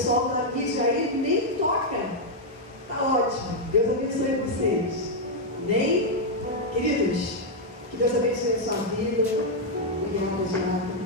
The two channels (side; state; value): both; normal; correlation -0.02